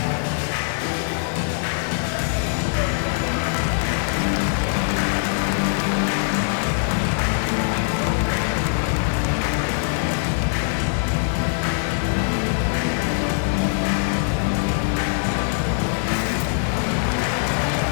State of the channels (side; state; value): right; silent; digital silence